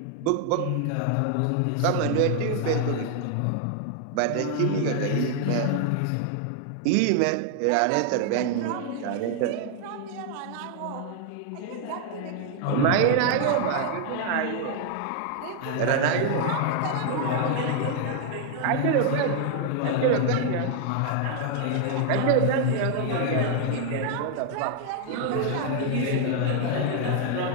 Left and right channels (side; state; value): both; different; correlation 0.00